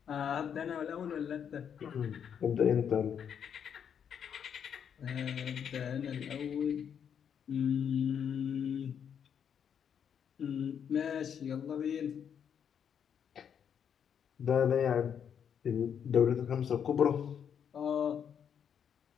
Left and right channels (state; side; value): quieter; right; 8.0 dB